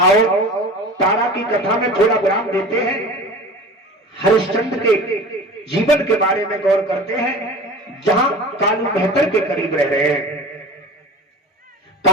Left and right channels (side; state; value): both; normal; correlation 0.37